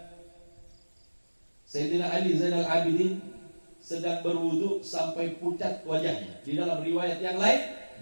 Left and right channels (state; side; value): inverted; both; correlation -1.00